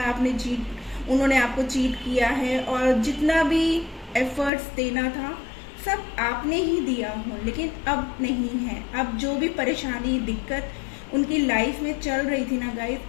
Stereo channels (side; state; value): right; drops out; at 4.5 s